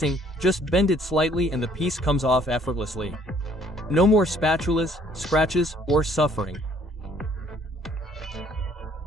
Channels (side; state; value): both; normal; correlation 0.61